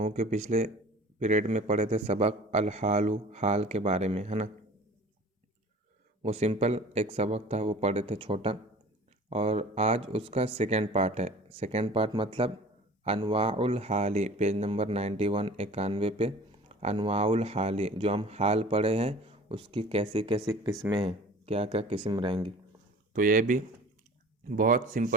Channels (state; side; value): normal; both; correlation 0.44